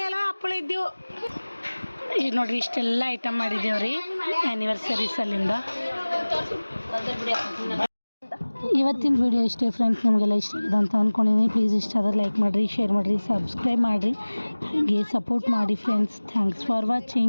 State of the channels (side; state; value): both; inverted; correlation -1.00